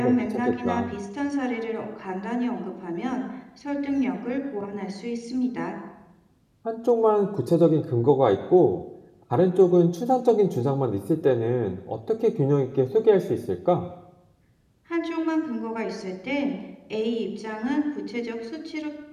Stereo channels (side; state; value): both; identical; correlation 1.00